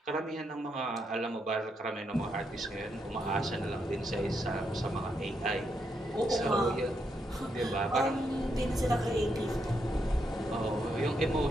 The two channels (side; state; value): both; normal; correlation 0.80